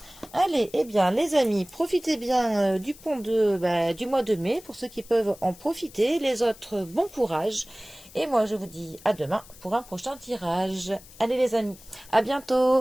Allez, eh bien, les amis, profitez bien du pont du mois de mai pour ceux qui peuvent en profiter. Les autres, bon courage. Et moi, je vous dis à demain pour un prochain tirage. Allez, les amis, à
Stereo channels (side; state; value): left; noise; hiss, 21 dB below the sound